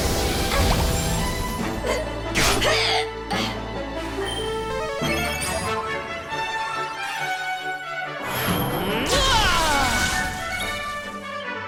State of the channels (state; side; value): identical; both; correlation 1.00